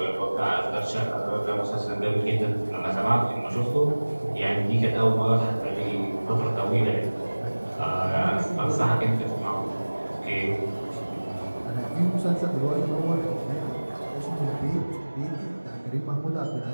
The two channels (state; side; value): inverted; both; correlation -1.00